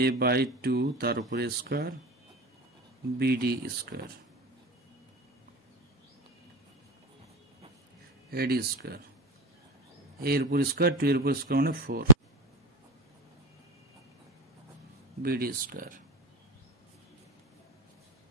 a/2 তার উপরে square BD square, AD square. a এর উপর স্কয়ার, 2 এর উপর স্কয়ার মানে 4 BD square.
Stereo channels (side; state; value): both; normal; correlation 0.17